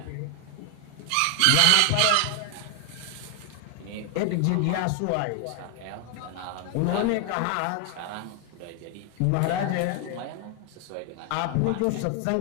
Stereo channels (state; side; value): different; both; correlation 0.00